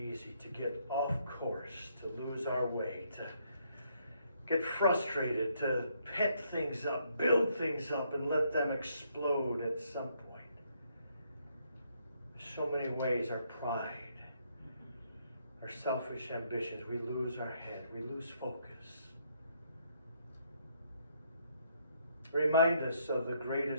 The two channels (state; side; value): inverted; both; correlation -0.72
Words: to get off course, to lose our way, to get frustrated, to pent things up, build things up, and let them explode at some point. So many ways our pride, our selfish ambitions, we lose our head, we lose focus. Remind us of the